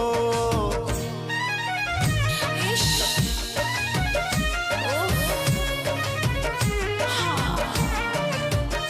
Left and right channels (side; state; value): both; identical; correlation 1.00